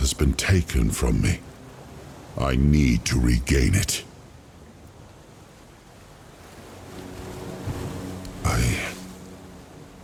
has been taken from me. I need to regain it.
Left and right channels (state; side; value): identical; both; correlation 1.00